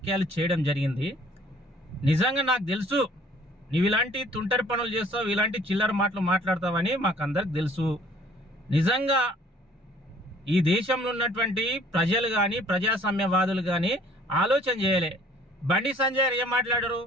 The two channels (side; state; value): both; normal; correlation 0.55